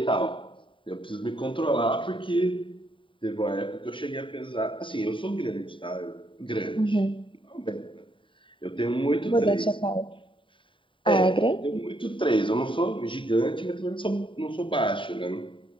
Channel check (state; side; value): late; right; 0.25 ms